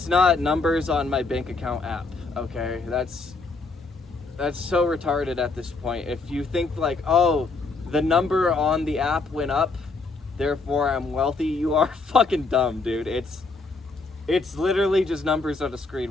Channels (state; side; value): quieter; right; 3.8 dB